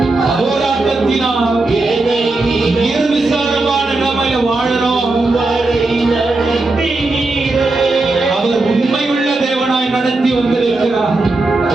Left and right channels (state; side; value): quieter; left; 3.2 dB